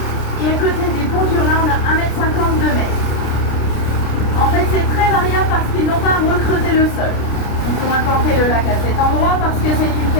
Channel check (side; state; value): right; late; 29 ms